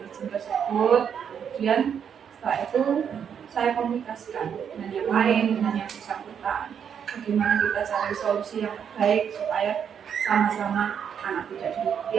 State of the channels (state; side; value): quieter; left; 7.9 dB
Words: tersebut, kemudian setelah itu saya komunikasikan dengan yang lain, dengan yang bersangkutan, bagaimana kita cari solusi yang baik supaya sama-sama anak tidak